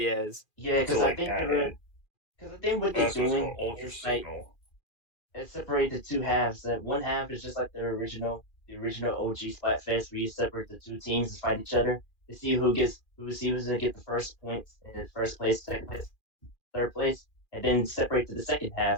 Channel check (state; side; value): late; right; 2.4 ms